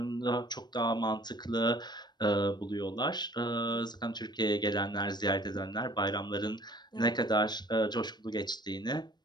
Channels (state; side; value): late; right; 0.21 ms